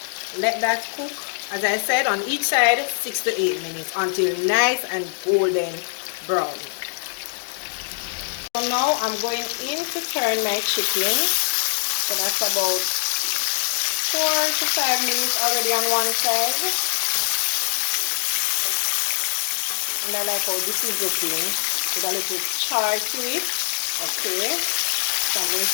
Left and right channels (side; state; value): right; silent; digital silence